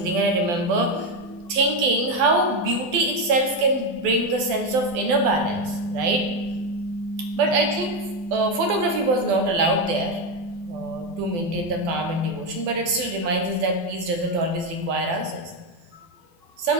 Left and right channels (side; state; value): left; late; 12 ms